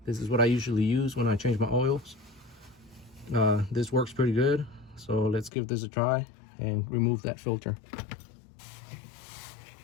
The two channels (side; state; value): right; drops out; at 5.5 s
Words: This is what I usually use when I change my oils. This works pretty good, so let's give this a try and remove that filter.